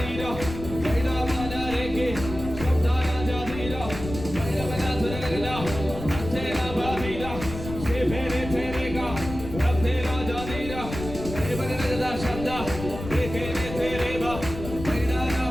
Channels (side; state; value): left; noise; rumble, 9 dB below the sound